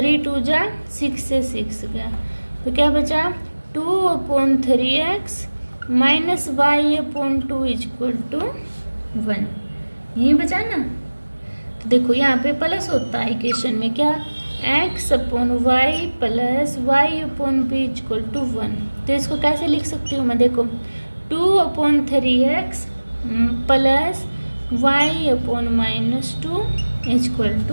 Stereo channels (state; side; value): inverted; both; correlation -1.00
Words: 2 जा 6 से 6 गया, तो क्या बचा 2/3x minus y/2 is equal to 1। यही बचा ना। तो देखो यहाँ पे प्लस होता है इक्वेशन में, क्या x/y plus y/b is equal to 1। तो इसको कैसे लिख सकती हूँ मैं, देखो 2/3x plus y/-2 is equal